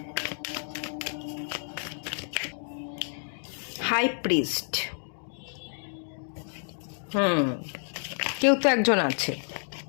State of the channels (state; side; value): silent; right; digital silence